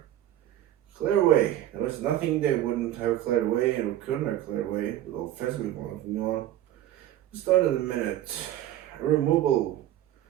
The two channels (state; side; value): quieter; left; 12.8 dB